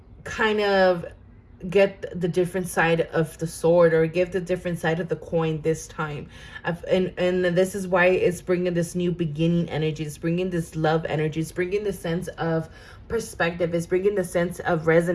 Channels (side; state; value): both; identical; correlation 1.00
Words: kind of get the different side of the sword, or give the different side of the coin this time. And this is why it's bringing this new beginning energy. It's bringing this love energy. It's bringing the sense of perspective. It's bringing a sense of